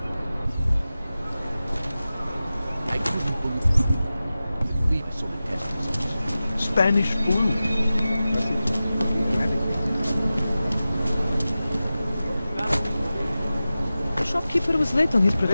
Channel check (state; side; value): inverted; both; correlation -0.95